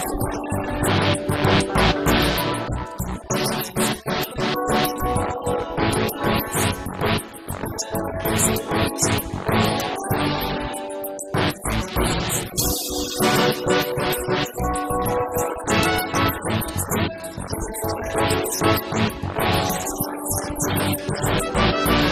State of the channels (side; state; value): both; identical; correlation 1.00